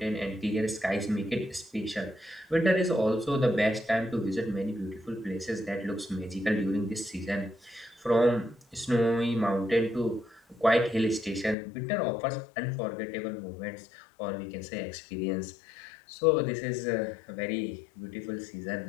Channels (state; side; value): drops out; right; at 11.6 s